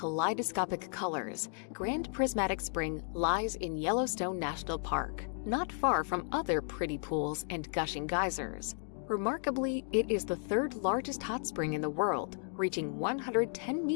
colors, Grand Prismatic Spring lies in Yellowstone National Park, not far from other pretty pools and gushing geysers. Remarkably, it is the third largest hot spring in the world, reaching 110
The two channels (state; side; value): silent; right; 55 dB below the other